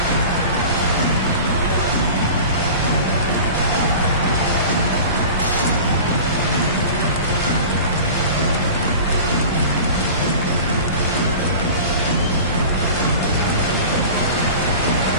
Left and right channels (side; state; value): both; inverted; correlation -0.37